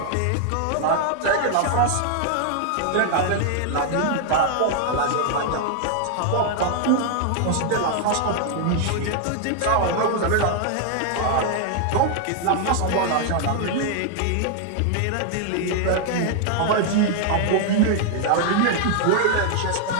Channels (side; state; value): both; different; correlation 0.00